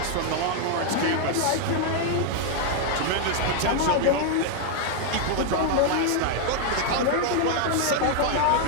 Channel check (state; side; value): different; both; correlation 0.00